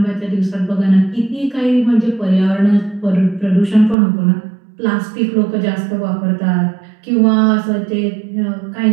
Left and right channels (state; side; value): drops out; left; at 4.0 s